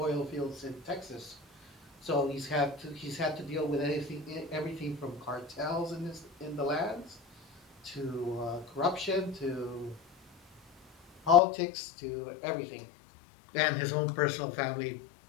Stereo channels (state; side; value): drops out; right; at 11.4 s